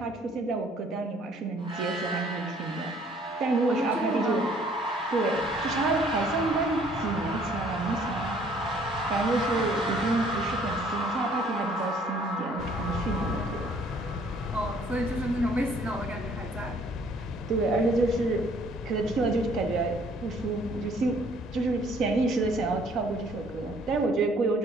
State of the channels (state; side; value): normal; both; correlation 0.60